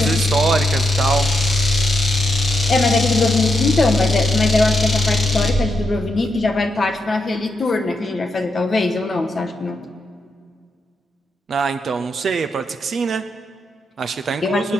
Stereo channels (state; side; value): normal; both; correlation 0.83